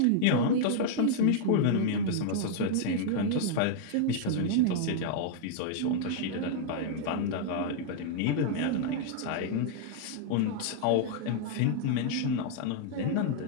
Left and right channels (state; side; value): different; both; correlation -0.01